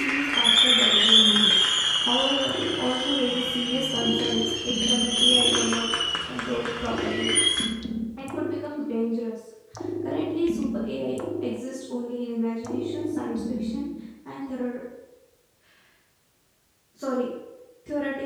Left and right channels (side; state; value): both; identical; correlation 1.00